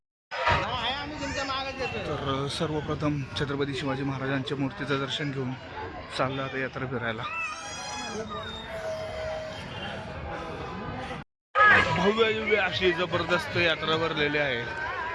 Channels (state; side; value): identical; both; correlation 1.00